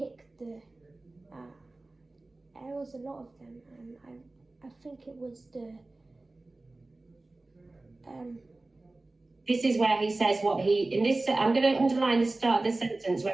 the. There was a lot of them, and I think it was the. This is where he says what he in this. I'm going to underline the start of the sentence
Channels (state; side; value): quieter; left; 3.0 dB